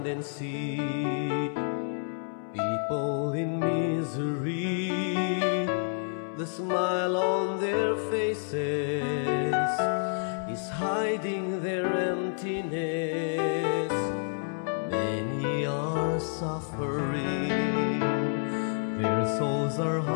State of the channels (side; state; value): right; silent; 58 dB below the other